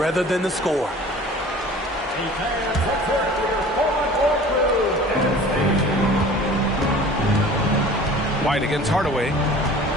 than the score. White against Hardaway.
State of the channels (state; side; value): normal; both; correlation 0.44